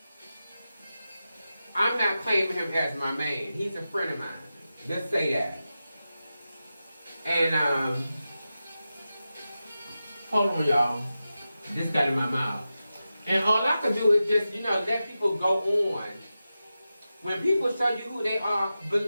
I'm not claiming him as my man. He's a friend of mine. Let's say that. And hold on, y'all. This got in my mouth. And all I can do is just, let people go on. When people show you who they are,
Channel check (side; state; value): both; inverted; correlation -0.92